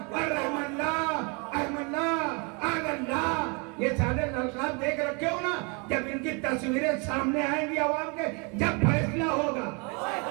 ये सारे ललकार देख रखे हो ना, जब इनकी तस्वीरें सामने आएंगी आवाम के, जब फैसला होगा।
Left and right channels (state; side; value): quieter; left; 32.5 dB